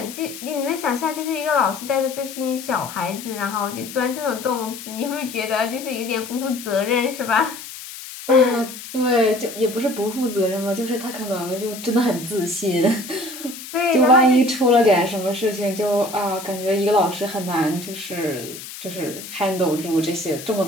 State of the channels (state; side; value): noise; left; hiss, 12 dB below the sound